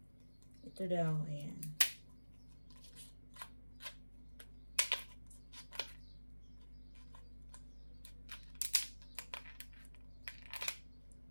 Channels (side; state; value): both; inverted; correlation -1.00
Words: Ito daw, ayan.